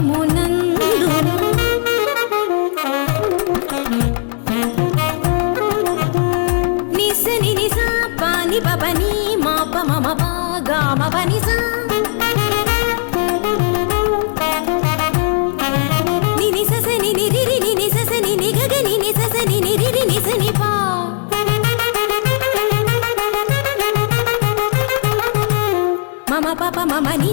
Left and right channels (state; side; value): silent; right; 56 dB below the other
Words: నిసని నిస పాని పని మాప మమ పా గమ పని స నిని సస నిని రిరి నిని సస నిని గగ నిని సస నిని రిరి నిసని పా మమ పాప మమ